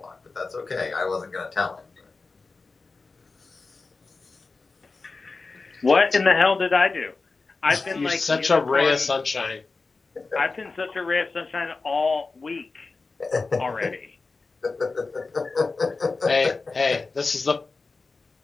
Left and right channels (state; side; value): quieter; right; 4.0 dB